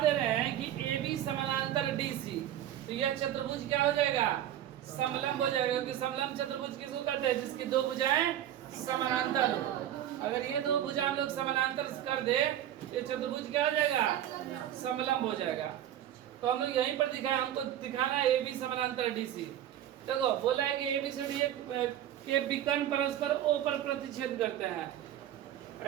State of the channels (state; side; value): quieter; left; 11.6 dB